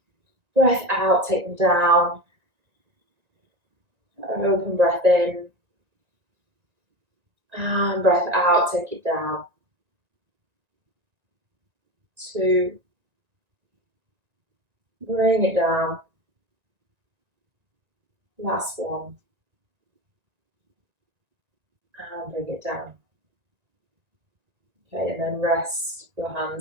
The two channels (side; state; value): left; late; 1.9 ms